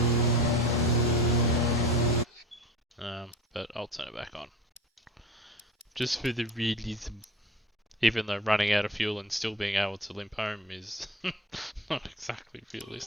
But I'll turn it back on. Just for the realism. Even though running out of fuel and still being able to limp home is not exactly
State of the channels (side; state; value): both; normal; correlation 0.36